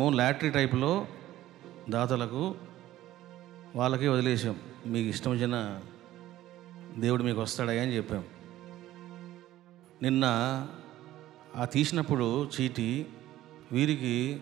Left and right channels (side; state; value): left; quieter; 14.5 dB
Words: లాటరీ టైప్లో దాతలకు వాళ్ళకి వదిలేసాం. మీకు ఇష్టం వచ్చిన దేవుడు మీకు వస్తాడయ్యా అని చెప్పాం. నిన్న ఆ తీసినప్పుడు చీటి వీరికి